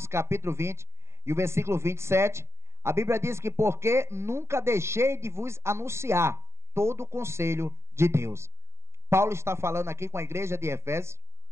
capítulo 20, e o versículo 27, a Bíblia diz que porque nunca deixei de vos anunciar todo o conselho de Deus. Paulo está falando aqui com a igreja de Efésios.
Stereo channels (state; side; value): late; left; 0.13 ms